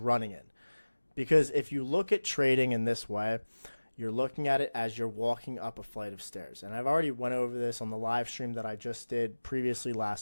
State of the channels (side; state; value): both; inverted; correlation -1.00